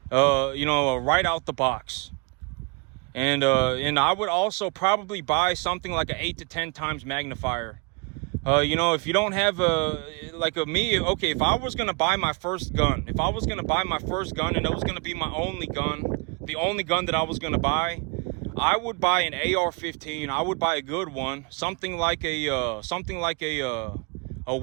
Right out the box. And I would also probably buy something like an 8 to 10 times magnifier. If you don't have okay, if I was going to buy my first gun, and it was going to be my only gun, the only gun that I was going to buy, I would buy an AR-15. I would buy a good one, something like a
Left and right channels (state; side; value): quieter; left; 30.9 dB